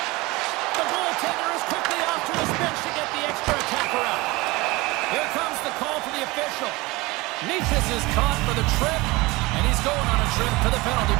The goaltender is quickly off to his bench to get the extra attacker out. Here comes the call to the official. Niches is caught for the trip, and he's going on a trip to the penalty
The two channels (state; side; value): quieter; left; 22.5 dB